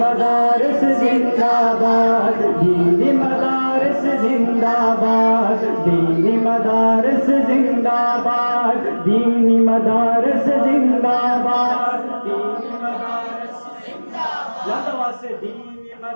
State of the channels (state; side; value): inverted; both; correlation -1.00